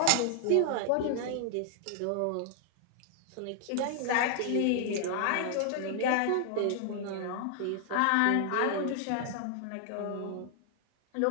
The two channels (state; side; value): different; both; correlation 0.00